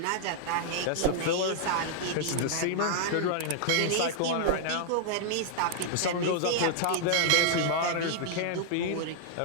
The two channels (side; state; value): both; different; correlation -0.01